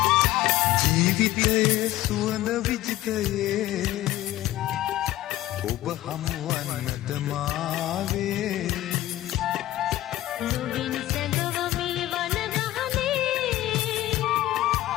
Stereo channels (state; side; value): quieter; right; 15.1 dB